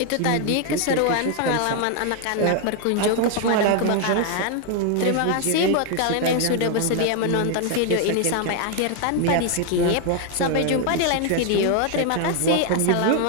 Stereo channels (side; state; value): both; different; correlation 0.01